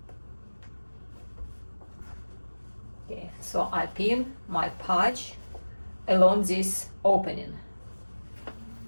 Okay, so I pin my patch along this opening.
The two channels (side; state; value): both; inverted; correlation -1.00